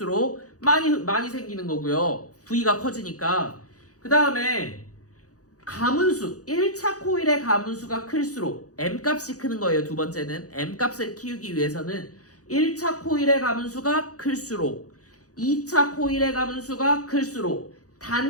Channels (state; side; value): late; right; 0.67 ms